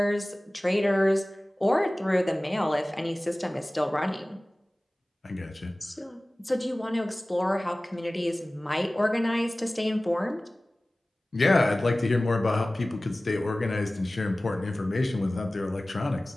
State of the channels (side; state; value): both; normal; correlation 0.98